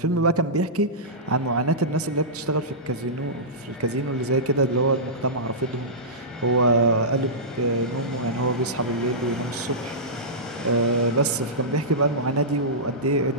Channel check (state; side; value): normal; both; correlation -0.16